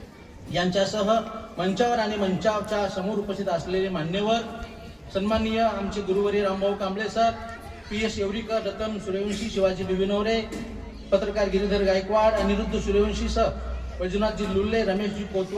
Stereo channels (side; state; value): both; identical; correlation 1.00